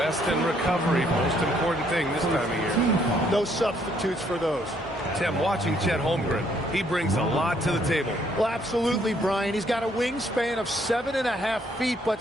and recovery, most important thing this time of year. No substitutes for those. Tim, watching Chet Holmgren, he brings a lot to the table. Well, absolutely, Brian. He's got a wingspan of 7.5 feet, but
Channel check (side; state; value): both; normal; correlation 0.68